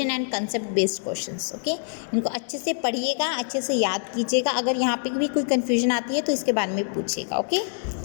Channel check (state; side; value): silent; right; digital silence